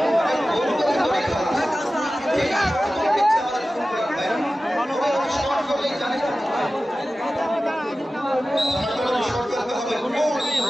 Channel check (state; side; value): normal; both; correlation 0.95